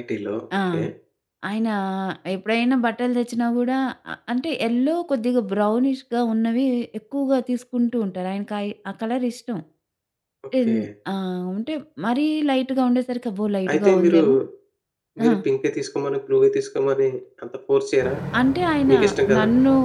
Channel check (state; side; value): identical; both; correlation 1.00